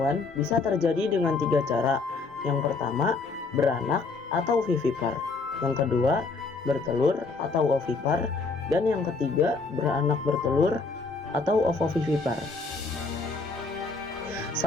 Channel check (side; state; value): right; quieter; 4.1 dB